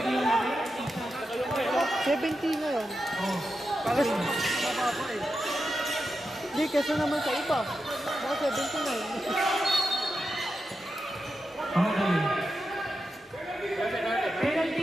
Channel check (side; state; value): both; normal; correlation 0.88